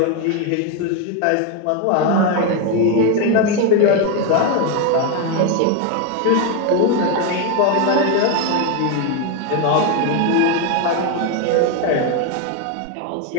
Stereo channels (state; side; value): different; both; correlation 0.02